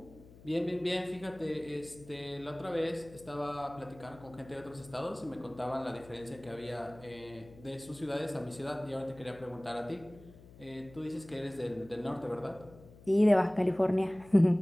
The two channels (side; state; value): left; noise; hum, 21 dB below the sound